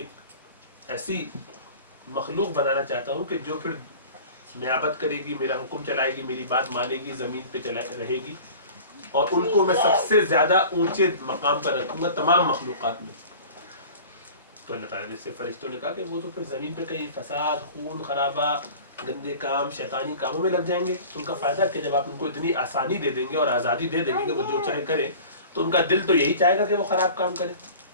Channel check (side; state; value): both; inverted; correlation -0.41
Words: ایسی مخلوق بنانا چاہتا ہوں کہ جو پھر نیابت کرے گی، میرا حکم چلائے گی، میری بات مانے گی، زمین پہ رہے گی، اور ان کو میں سب سے زیادہ اونچے مقام پر رکھوں گا تمام مخلوقات میں۔ تو اللہ تعالیٰ نے صرف فرشتوں نے کہا کہ وہ تو پھر زمین پہ کہیں فساد، خون خرابہ، گندے کام، شیطانی کاموں میں لگ جائیں گے، تو ان کا فائدہ کہ جب آپ ان کو اتنی آسانی دے دیں گے اور آزادی دے دیں گے کہ وہ جو چاہے کریں، تو ان کا دل تو یہی چاہے گا کہ وہ خراب کام کرے،